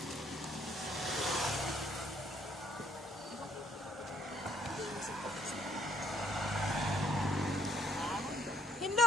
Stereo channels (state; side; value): normal; both; correlation 0.65